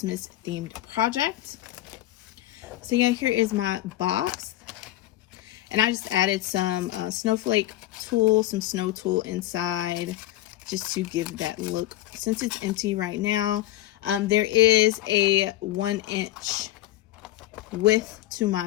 themed project. So yeah, here is my box, and I just added some snowflake tool, some snow tool inside, just to give that look. Since it's empty right now, there is a 1-inch width to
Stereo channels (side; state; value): right; quieter; 15.1 dB